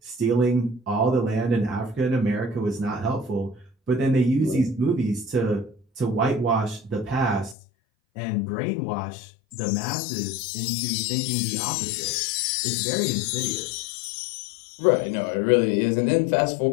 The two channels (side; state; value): right; drops out; at 7.6 s